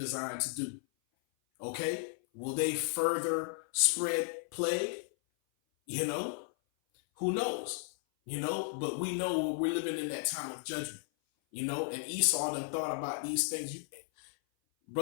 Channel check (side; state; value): right; silent; 55 dB below the other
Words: to do? Okay, will they further spread plague? You know, who knows? But we know we're living in that time of judgment. And Esau then thought about these things.